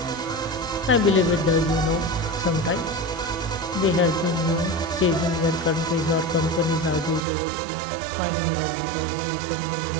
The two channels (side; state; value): left; drops out; at 7.2 s